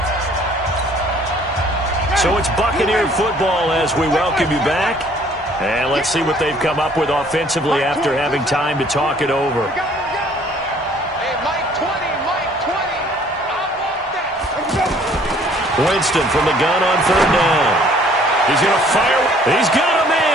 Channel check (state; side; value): normal; both; correlation 0.58